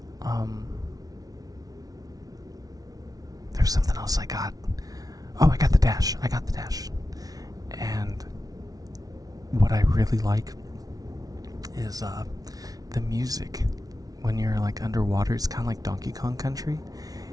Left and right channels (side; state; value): left; late; 0.18 ms